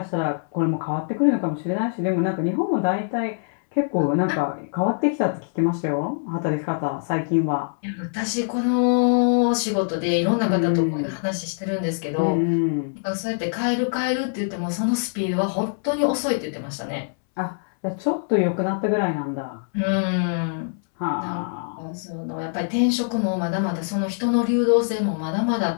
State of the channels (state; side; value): silent; right; 63 dB below the other